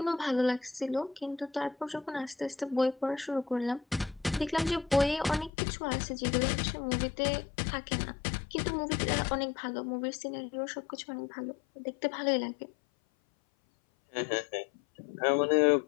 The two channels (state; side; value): drops out; right; at 5.5 s